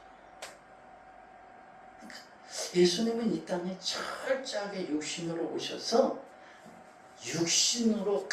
그러니까 예수님은 이 땅에 철저하게 육신으로 오셔서 육신으로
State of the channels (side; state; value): both; identical; correlation 1.00